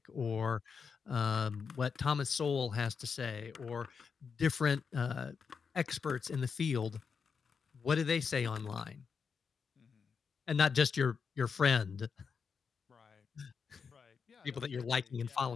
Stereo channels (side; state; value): right; quieter; 5.9 dB